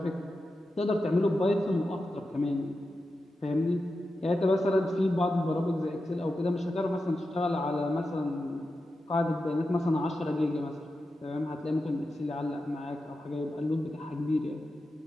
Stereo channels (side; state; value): both; normal; correlation 0.90